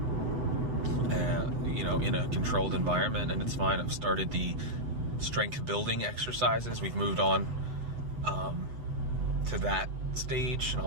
in a controlled environment, and it's fine. I've started the strength building exercises. We've moved on to that stage, and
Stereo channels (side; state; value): left; late; 8.0 ms